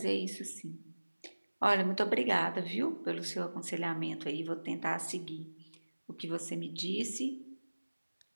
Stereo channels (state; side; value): inverted; both; correlation -1.00